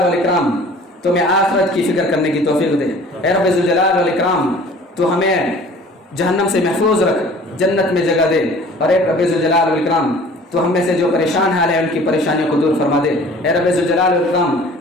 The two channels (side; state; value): both; normal; correlation 0.48